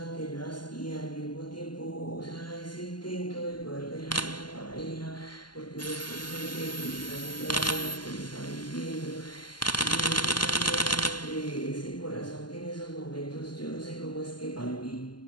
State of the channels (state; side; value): late; right; 0.71 ms